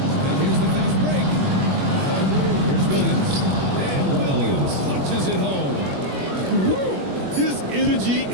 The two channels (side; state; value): left; late; 21 ms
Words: And here's the fast break. Here's Williams. And Williams punches it home. Woo! His energy